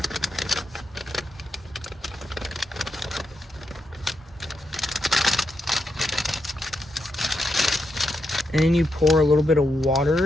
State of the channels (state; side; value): normal; both; correlation 0.84